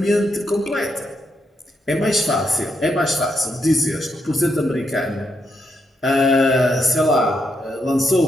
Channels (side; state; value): both; normal; correlation 0.80